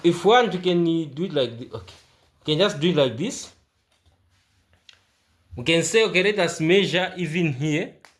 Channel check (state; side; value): identical; both; correlation 1.00